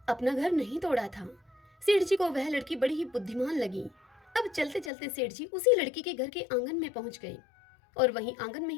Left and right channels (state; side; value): drops out; right; at 4.9 s